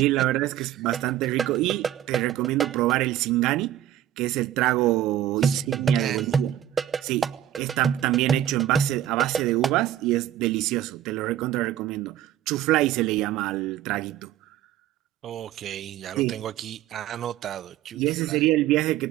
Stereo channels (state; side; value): quieter; left; 12.0 dB